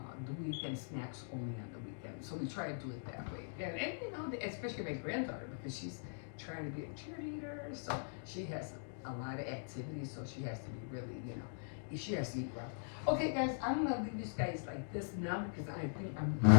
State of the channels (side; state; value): right; silent; digital silence